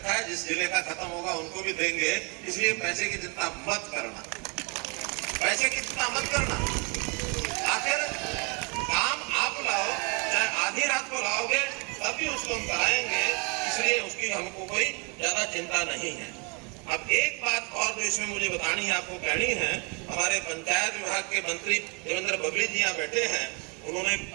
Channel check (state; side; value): quieter; left; 32.7 dB